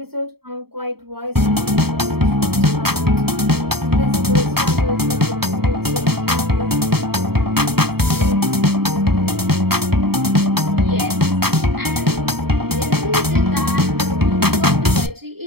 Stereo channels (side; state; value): left; late; 0.96 ms